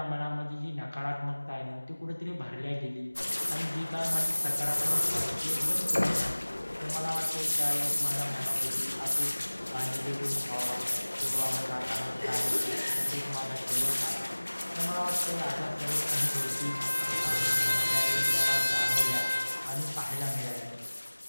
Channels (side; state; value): both; inverted; correlation -1.00